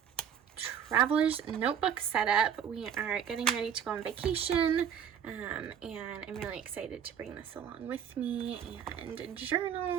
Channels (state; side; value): quieter; left; 8.4 dB